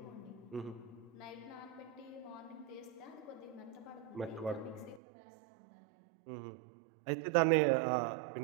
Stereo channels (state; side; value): drops out; left; at 5.0 s